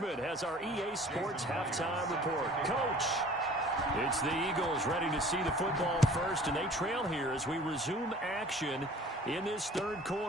has our EA Sports halftime report. Coach, it's the Eagles ready to see the football first, and they trail here as we resume action in this third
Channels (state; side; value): normal; both; correlation 0.48